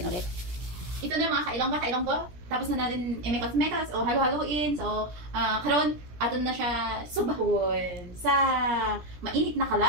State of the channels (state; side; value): late; left; 17 ms